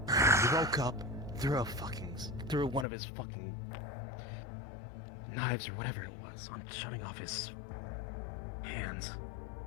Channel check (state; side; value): drops out; right; at 2.9 s